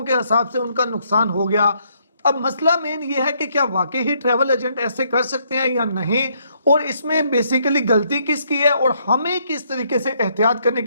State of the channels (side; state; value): both; inverted; correlation -0.71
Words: के हिसाब से उनका नुकसान हो गया। अब मसला मेन ये है कि क्या वाकई ही ट्रैवल एजेंट ऐसे कर सकते हैं या नहीं, और इसमें बेसिकली गलती किसकी है और हमें किस तरीके से एहतियात करने